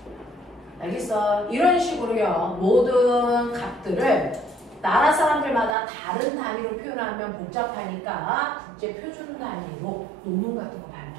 알겠어? 이런 식으로요. 모든 값들을 나라 사람들마다 다른 단위로 표현하면 복잡하니까 국제 표준 단위로 논문 같은 거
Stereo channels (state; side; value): drops out; left; at 5.8 s